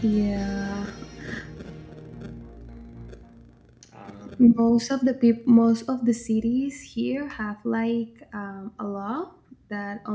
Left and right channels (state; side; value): identical; both; correlation 1.00